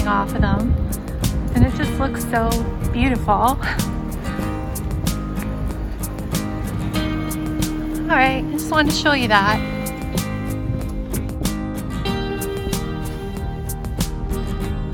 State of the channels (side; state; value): both; identical; correlation 1.00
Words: off of them, and it just looks so beautiful. Alright, I just wanted to show you that.